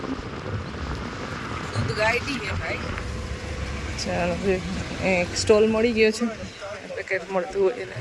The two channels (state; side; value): identical; both; correlation 1.00